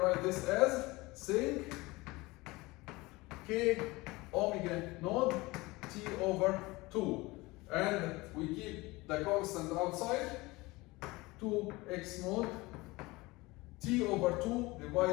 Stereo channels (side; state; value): right; quieter; 22.1 dB